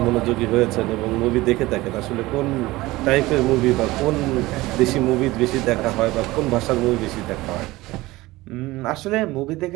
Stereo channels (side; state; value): left; quieter; 19.4 dB